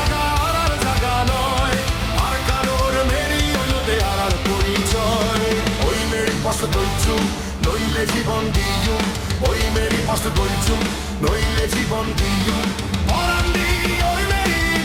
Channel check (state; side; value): identical; both; correlation 1.00